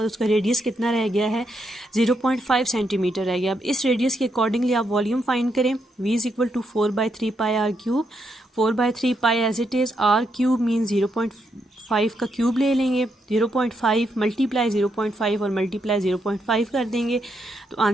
उसका रेडियस कितना रह गया है, 0.5 सेंटीमीटर रह गया। अब इस रेडियस के अकॉर्डिंगली आप वॉल्यूम फाइंड करें। v is equal to 4/3 pi r cube, 4/3 pi as it is, r cube mean 0.5 का क्यूब ले लेंगे, 0.5 मल्टीप्लाई 0.5 और मल्टीप्लाई 0.5 कर देंगे तो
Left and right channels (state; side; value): normal; both; correlation 0.80